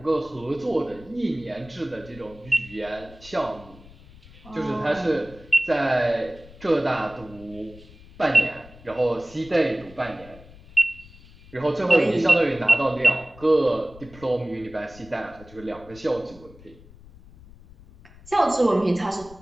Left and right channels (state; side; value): noise; left; rumble, 21 dB below the sound